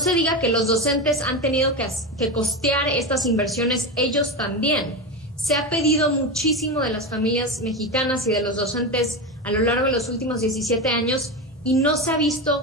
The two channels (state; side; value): normal; both; correlation 0.18